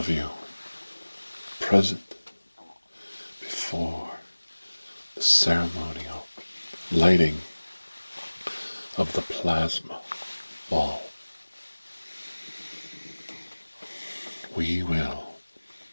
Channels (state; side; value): inverted; both; correlation -1.00